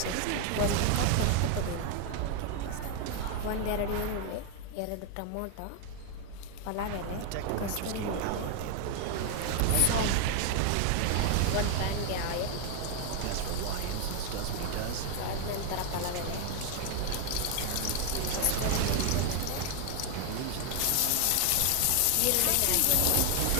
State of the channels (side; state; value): both; different; correlation 0.01